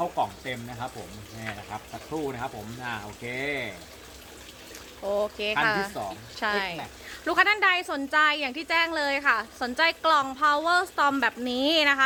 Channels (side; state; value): both; identical; correlation 1.00